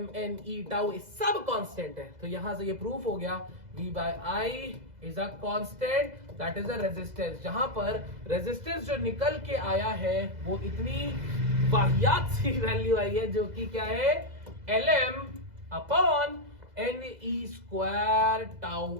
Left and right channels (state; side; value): late; left; 2.0 ms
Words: N E tau सब कांस्टेंट है, तो यहां से ये प्रूफ हो गया v by I is a constant that is a resistance. जहां पर रेजिस्टेंस जो निकल के आया है वो इतनी वाहियात सी वैल्यू आई है, जो कि क्या है, L M upon N E square